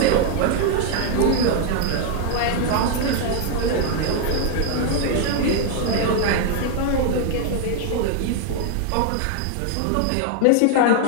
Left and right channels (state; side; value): different; both; correlation 0.00